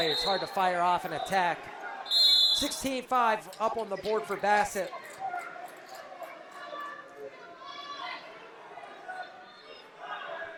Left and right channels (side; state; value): both; identical; correlation 1.00